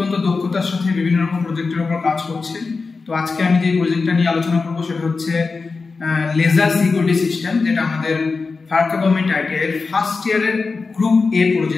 দক্ষতার সাথে বিভিন্ন রকম প্রজেক্টের উপর কাজ করছে। তো আজকে আমি যে প্রজেক্টটা নিয়ে আলোচনা করবো সেটা হচ্ছে লেজার সিকিউরিটি সিস্টেম, যেটা আমাদের ফারাক্কা গভর্নমেন্ট আইটিআই এর ফার্স্ট ইয়ারের গ্রুপ এ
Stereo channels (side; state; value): right; quieter; 4.3 dB